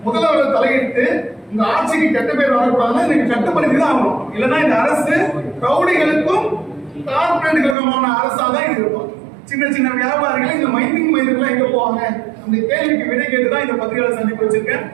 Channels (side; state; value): left; drops out; at 7.8 s